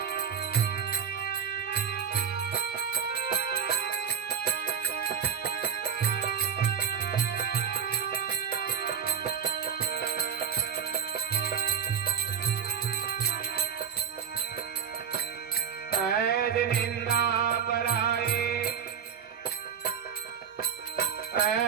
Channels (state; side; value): quieter; left; 7.7 dB